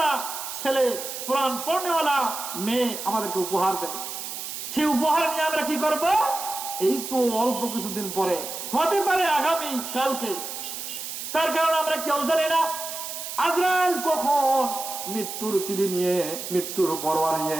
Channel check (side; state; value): right; noise; hiss, 7 dB below the sound